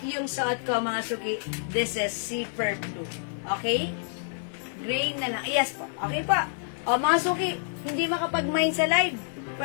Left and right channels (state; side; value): silent; right; digital silence